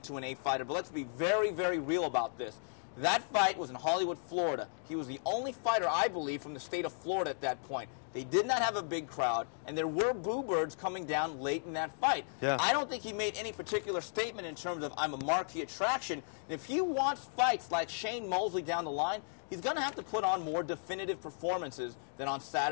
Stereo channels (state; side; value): silent; right; digital silence